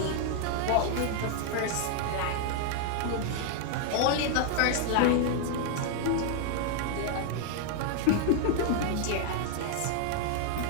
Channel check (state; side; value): different; both; correlation 0.00